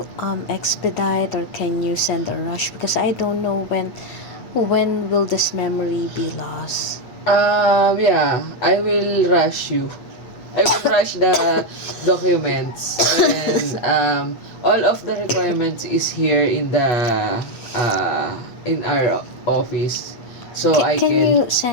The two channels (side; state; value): right; late; 8.2 ms